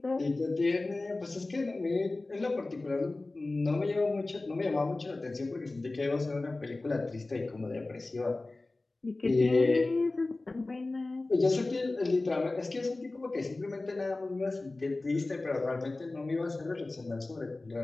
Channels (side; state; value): right; quieter; 3.1 dB